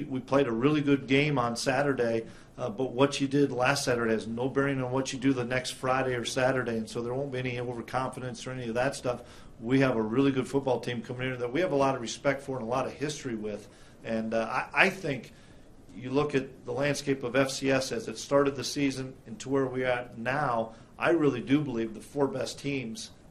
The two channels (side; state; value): both; identical; correlation 1.00